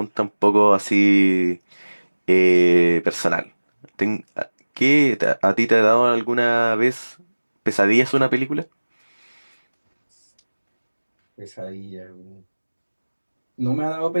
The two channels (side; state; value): both; inverted; correlation -1.00